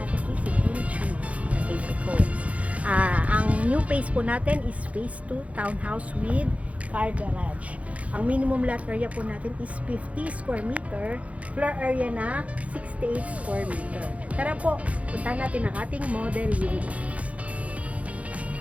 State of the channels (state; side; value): late; left; 0.066 ms